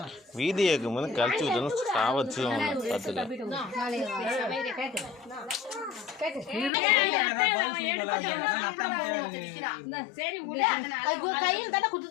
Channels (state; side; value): drops out; right; at 6.7 s